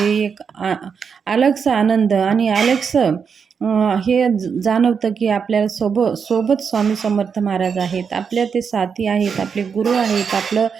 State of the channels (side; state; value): left; quieter; 6.3 dB